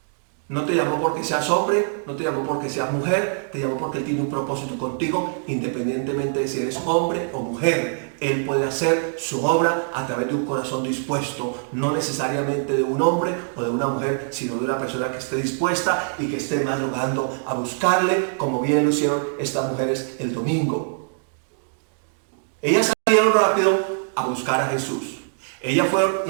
no te llamó porque seas hombre, no te llamó porque seas mujer, te llamó porque Él tiene un propósito contigo, independientemente de si eres hombre o mujer. Él puede hacer su obra a través de un corazón dispuesto, no necesariamente de un hombre o de una mujer, sino de una persona que esté dispuesta y que esté madrugando a buscarle, como bien lo hicieron estas mujeres el domingo. Ellas salieron rápido a buscar a Jesús. Ellas fueron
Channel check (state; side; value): silent; left; digital silence